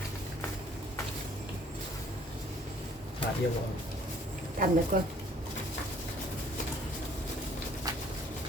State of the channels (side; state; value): both; normal; correlation 0.58